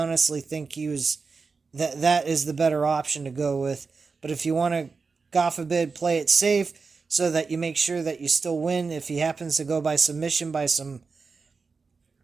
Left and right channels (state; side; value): quieter; left; 4.7 dB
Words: think that is the better option to go with. But if you want to, God forbid, play it safe so that you make sure that you still win, if he happens to go by submission by some